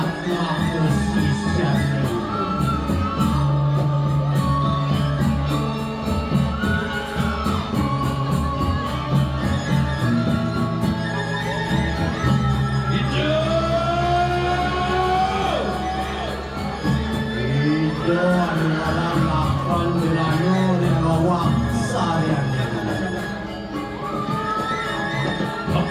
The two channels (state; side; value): identical; both; correlation 1.00